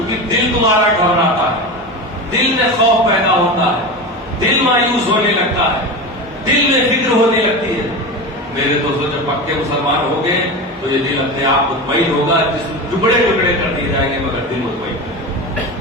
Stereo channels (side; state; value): both; normal; correlation 0.25